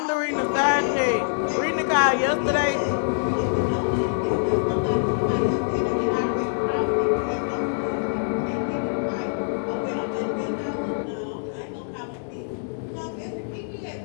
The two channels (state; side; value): silent; right; digital silence